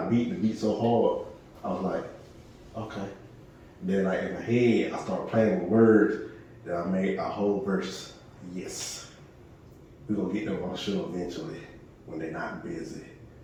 beat, the beat so hard. I was like, okay. Then like in my head, I started playing with words. Then I made a whole verse. Yes. We're gonna get them on the show eventually when they're not busy.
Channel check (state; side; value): identical; both; correlation 1.00